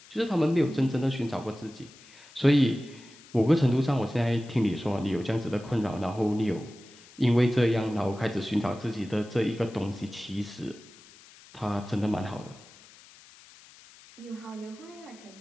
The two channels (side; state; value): left; noise; hiss, 23 dB below the sound